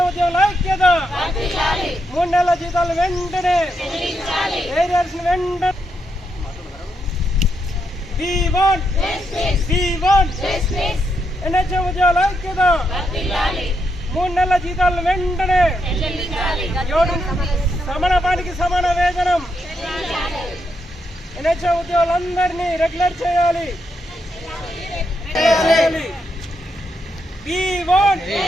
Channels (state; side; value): normal; both; correlation 0.81